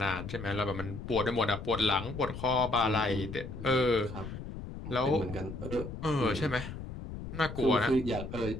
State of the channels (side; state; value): left; noise; rumble, 9 dB below the sound